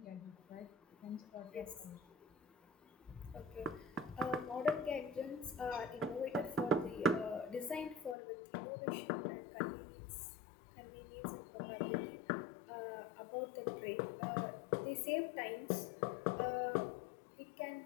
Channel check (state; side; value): drops out; right; at 8.2 s